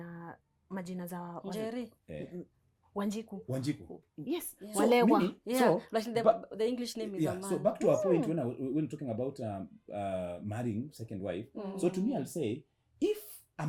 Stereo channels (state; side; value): identical; both; correlation 1.00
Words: majina za Njeri. Wanjiku. Yes. Yeah. Walewa. So like the English name is a man. So back to our point when talking about marrying second wife. So to me, I'll say, if a